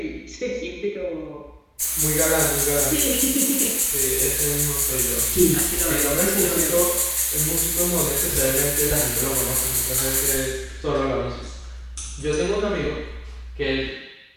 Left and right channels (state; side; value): identical; both; correlation 1.00